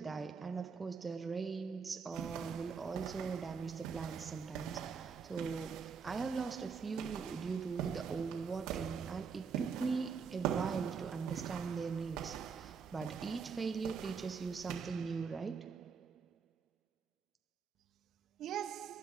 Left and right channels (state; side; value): quieter; left; 5.8 dB